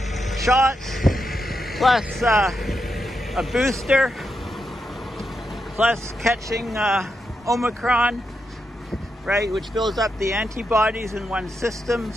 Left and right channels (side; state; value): both; normal; correlation 0.85